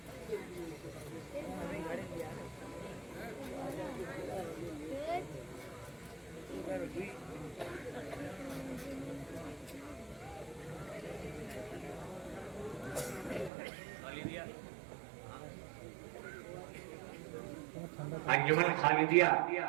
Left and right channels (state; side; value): drops out; left; at 13.5 s